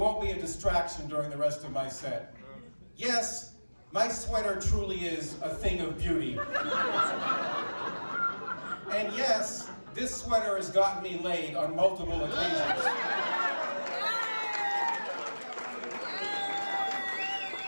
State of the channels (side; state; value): both; inverted; correlation -1.00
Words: be a distraction during the rest of my set. Yes, my sweater truly is a thing of beauty. And yes, this sweater has gotten me laid on multiple occasions.